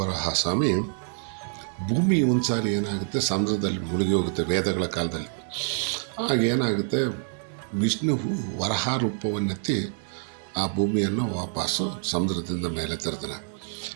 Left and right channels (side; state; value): left; silent; digital silence